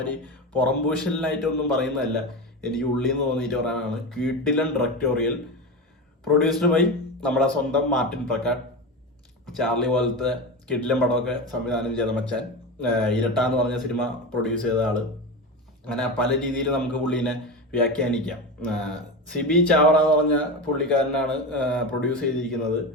പുറംപൂശലിനായിട്ടൊന്നും പറയുന്നതല്ല, എനിക്ക് ഉള്ളിൽ നിന്ന് തോന്നിയിട്ട് പറയാനാണ്. കിടിലൻ ഡയറക്ടോറിയൽ, പ്രൊഡ്യൂസ്ഡ് ബൈ നമ്മുടെ സ്വന്തം മാർട്ടിൻ പ്രക്കാട്ട്. ചാർലി പോലത്തെ കിടിലൻ പടമൊക്കെ സംവിധാനം ചെയ്ത മച്ചാൻ. ഇരട്ട എന്ന് പറഞ്ഞ സിനിമ പ്രൊഡ്യൂസ് ചെയ്ത ആള്. അങ്ങനെ പല രീതിയിൽ നമുക്ക് പുള്ളീനെ വ്യാഖ്യാനിക്കാം. സിബി ചാവറ എന്ന് പറഞ്ഞ പുള്ളിക്കാരനാണ് പ്രൊഡ്യൂസ് ചെയ്തിരിക്കുന്നത്.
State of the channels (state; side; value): normal; both; correlation 0.22